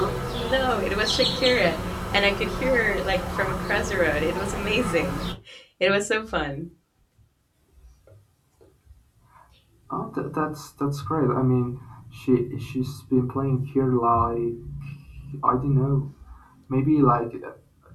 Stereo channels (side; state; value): both; identical; correlation 1.00